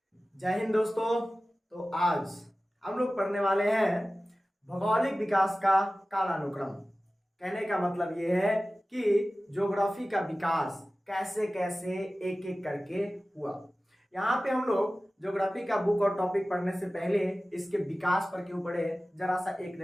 जय हिंद दोस्तों। तो आज हम लोग पढ़ने वाले हैं भौगोलिक विकास का कालानुक्रम। कहने का मतलब ये है कि ज्योग्राफी का विकास कैसे कैसे एक एक करके हुआ। यहाँ पे हम लोग ज्योग्राफी का बुक और टॉपिक पढ़ने से पहले इसके विकास पर क्यों पढ़े, जरा सा एक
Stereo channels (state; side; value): normal; both; correlation 0.96